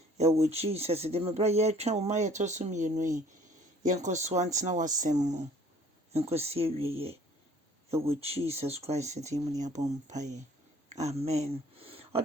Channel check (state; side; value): normal; both; correlation 0.55